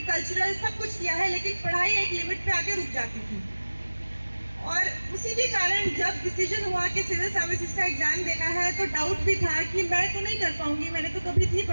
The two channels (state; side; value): inverted; both; correlation -1.00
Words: कल्चरल सब कुछ किया है, लेकिन पढ़ाई एक लिमिट पे आके रुक जाती थी। और उसी के कारण जब डिसीजन हुआ कि सिविल सर्विसेज का एग्ज़ाम देना है तो डाउट भी था कि मैं तो नहीं कर पाऊंगी, मैंने तो कभी इतनी